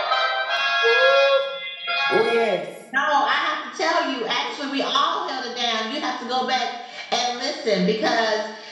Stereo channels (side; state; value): both; identical; correlation 1.00